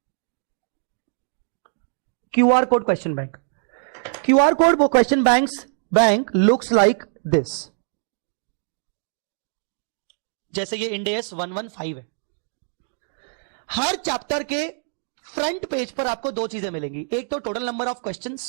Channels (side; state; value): left; silent; digital silence